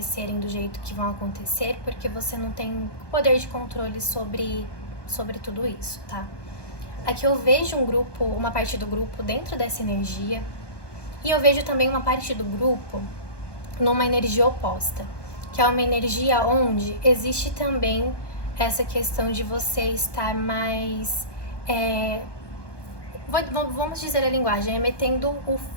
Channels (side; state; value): right; late; 1.2 ms